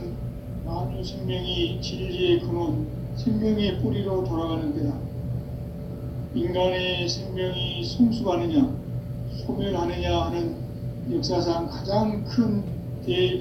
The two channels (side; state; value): both; identical; correlation 1.00